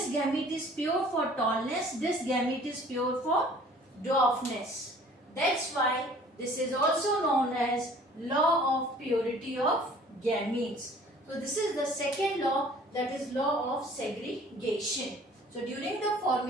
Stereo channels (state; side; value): normal; both; correlation 0.52